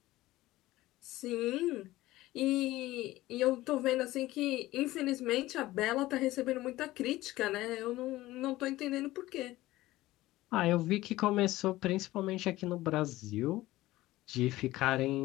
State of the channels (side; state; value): right; quieter; 17.2 dB